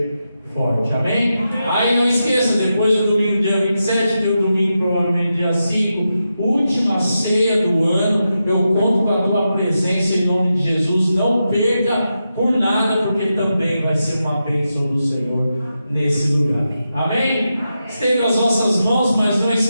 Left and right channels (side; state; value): both; inverted; correlation -0.88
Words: forte. Amém? Aí não esqueça, depois do domingo dia 27, tem o domingo provavelmente dia 5, última ceia do ano. Eu conto com a tua presença em nome de Jesus. Não perca por nada, porque também vai ser uma bênção do Senhor nesse lugar. Amém? Estenda as vossas mãos, mas não